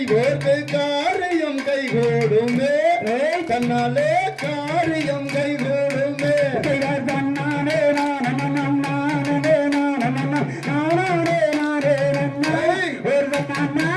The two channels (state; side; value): identical; both; correlation 1.00